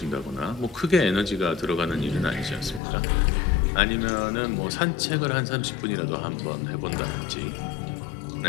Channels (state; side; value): drops out; right; at 2.8 s